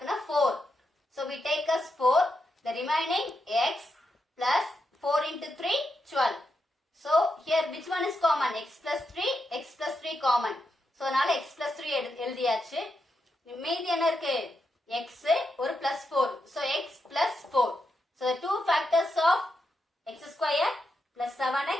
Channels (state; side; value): normal; both; correlation 0.85